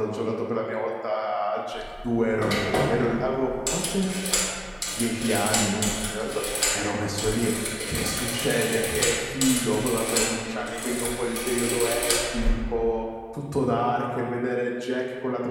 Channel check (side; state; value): both; identical; correlation 1.00